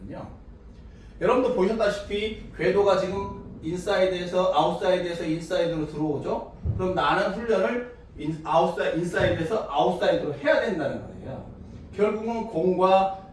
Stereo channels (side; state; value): both; identical; correlation 1.00